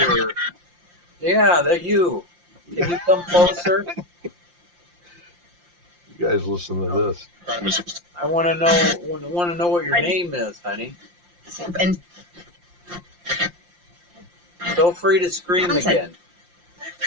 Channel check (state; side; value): late; left; 5.7 ms